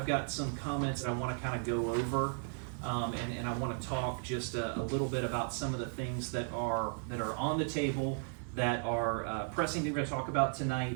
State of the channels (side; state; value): left; silent; 54 dB below the other